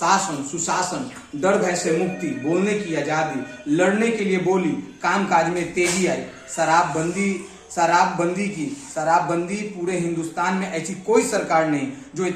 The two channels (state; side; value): identical; both; correlation 1.00